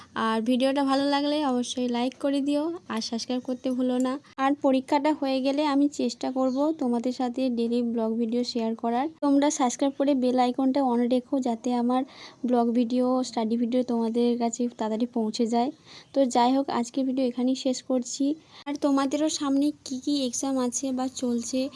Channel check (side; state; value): both; identical; correlation 1.00